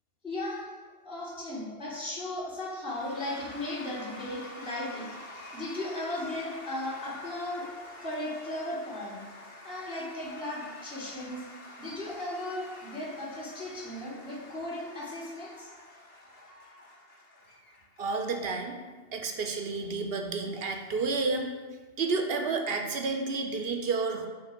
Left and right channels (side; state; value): left; late; 2.8 ms